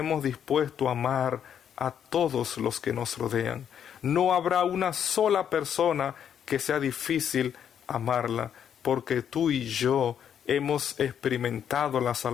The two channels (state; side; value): quieter; right; 8.8 dB